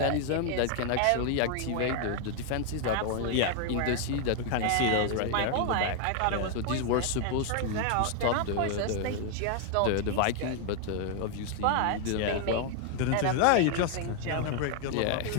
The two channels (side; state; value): both; different; correlation 0.00